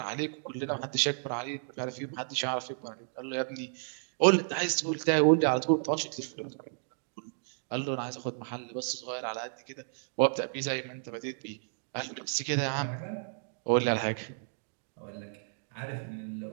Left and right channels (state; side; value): silent; left; digital silence